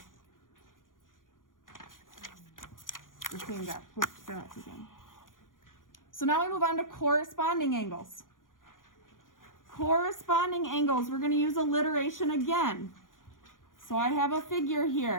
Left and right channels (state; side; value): late; right; 0.89 ms